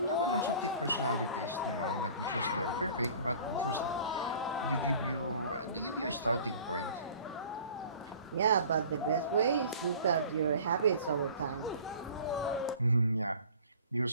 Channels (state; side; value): inverted; both; correlation -0.46